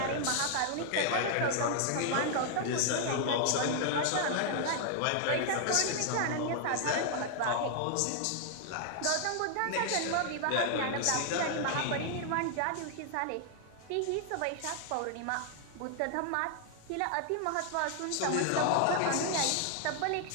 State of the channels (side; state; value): both; different; correlation 0.00